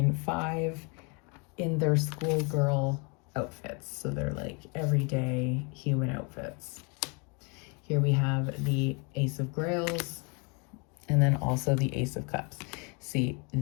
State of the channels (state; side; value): quieter; right; 33.4 dB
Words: 5 in their schoolgirl outfits. So they're like everyday human outfits. Here we have the Ace of Grails, and then also the Ace of Cups. See,